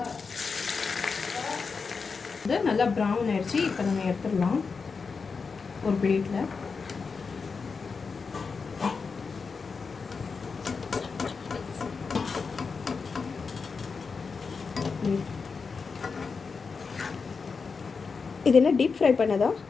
இது நல்லா ப்ரௌன் ஆயிடுச்சு. இப்போ நம்ம எடுத்துடலாம் ஒரு பிளேட்டில். இது என்ன டீப் ஃப்ரை பண்ணதா?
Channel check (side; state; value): right; quieter; 5.0 dB